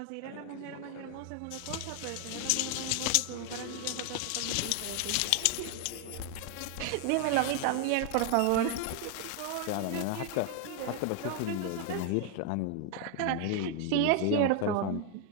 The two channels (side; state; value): both; different; correlation 0.01